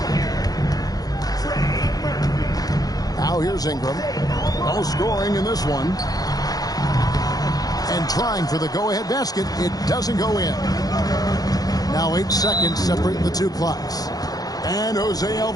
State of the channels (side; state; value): right; late; 0.18 ms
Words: Now here's Ingram. No scoring in this one. And trying for the go-ahead basket. It doesn't go in. Now 8 seconds separate the two clocks. And Jose